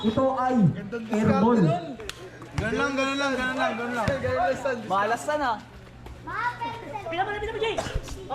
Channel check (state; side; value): identical; both; correlation 1.00